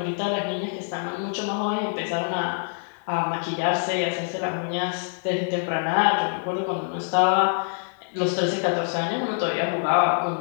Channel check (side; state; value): right; silent; digital silence